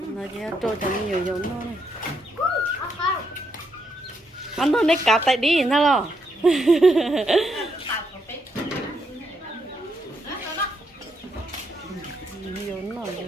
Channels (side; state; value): both; normal; correlation 0.78